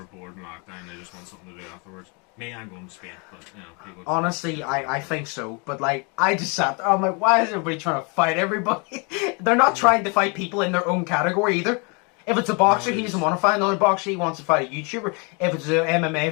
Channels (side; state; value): right; quieter; 32.7 dB